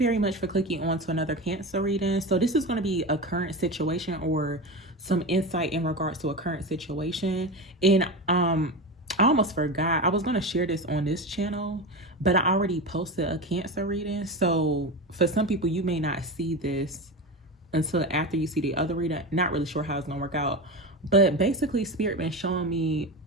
much for clicking on to another Cancer reading. So this is going to be a current situation or some insight in regards to a current situation. And I almost forgot. I was going to share this on this channel, but I already posted a Cancer reading. So for some people, you may not see this until after you see the other reading. Not really sure how it's going to work out. But basically, Spirit been showing me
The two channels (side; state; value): both; normal; correlation 0.23